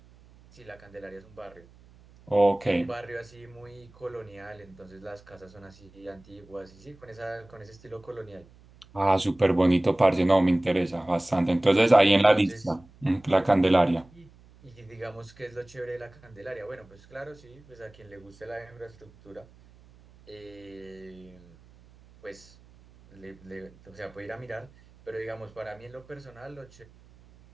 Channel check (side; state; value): right; noise; hum, 25 dB below the sound